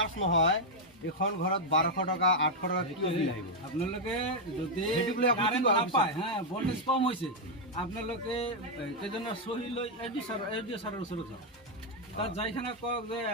নহয়, এখন ঘৰত 1200 টকা 800 টকা কি বিল আহিব? আপোনালোকে যদি কাৰেণ্ট নাপায়, হ্যাঁ, ভল্টেজ কম হৈছে, আপোনালোকে কেইজনৰ চহী লৈ এডি ছাৰৰ ওচৰত যাওক। তাত যাইখানে কওক যে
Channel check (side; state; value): both; normal; correlation 0.00